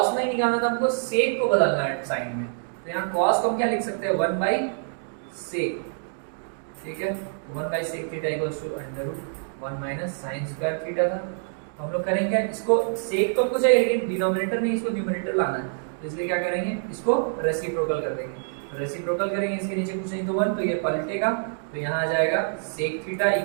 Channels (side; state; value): left; silent; digital silence